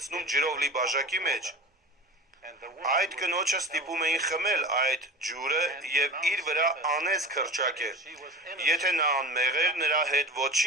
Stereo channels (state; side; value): normal; both; correlation 0.34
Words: ջրով լի բաժակի մեջ։ Այդ կնոջը ստիպում էին խմել այդ ջուրը եւ իր վրա անեծք հռչակել։ Եթե նա անմեղ էր, նրա հետ